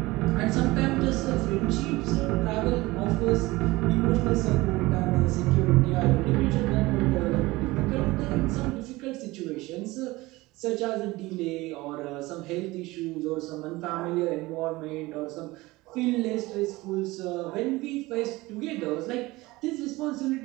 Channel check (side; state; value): left; quieter; 20.5 dB